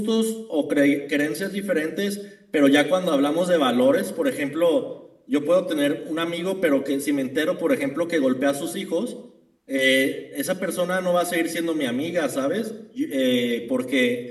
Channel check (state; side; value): identical; both; correlation 1.00